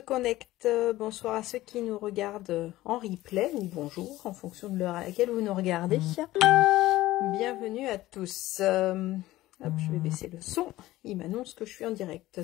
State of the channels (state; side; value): quieter; right; 16.6 dB